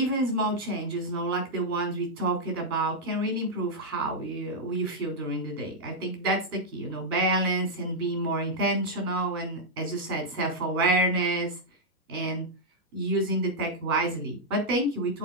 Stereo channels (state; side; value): normal; both; correlation -0.05